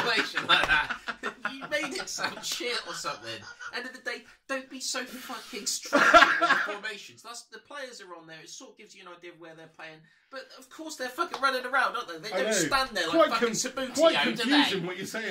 like that. You made it sound shit or something. End of the day, don't be so fucking stupid with the formations. The players are on there. It sort of gives you an idea of where they're playing. But of course they're fucking running around, don't they? They don't stand there like fucking Sabutio, quite do they? confusing what you're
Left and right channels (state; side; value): identical; both; correlation 1.00